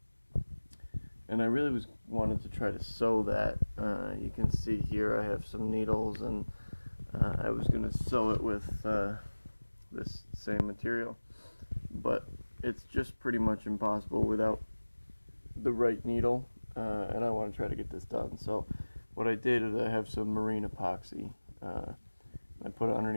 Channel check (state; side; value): inverted; both; correlation -1.00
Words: I really wanted to try to sew that. You can see here I have some needles, and I was going to sew it with this same material, but it's just pretty much impossible without the right needle, and I want to try to get this done. So what I did is I have some marine epoxy. I put it